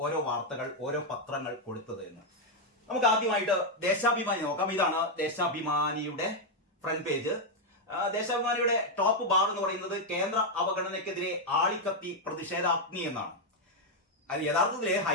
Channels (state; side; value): normal; both; correlation 0.01